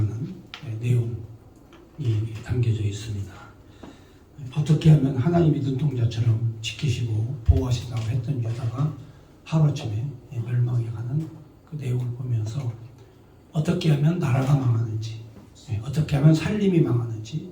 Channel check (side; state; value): both; identical; correlation 1.00